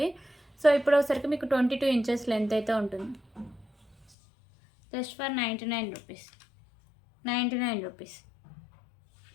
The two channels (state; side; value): drops out; right; at 4.0 s